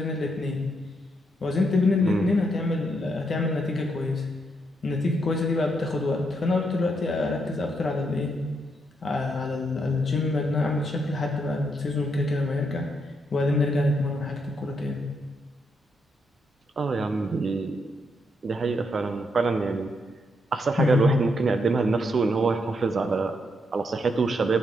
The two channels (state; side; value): normal; both; correlation 0.78